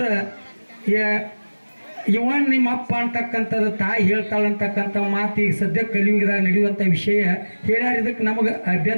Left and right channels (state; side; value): inverted; both; correlation -1.00